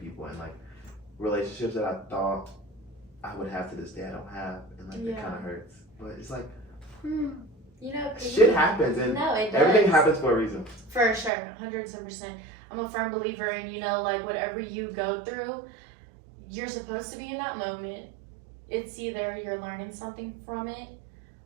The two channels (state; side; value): drops out; left; at 11.3 s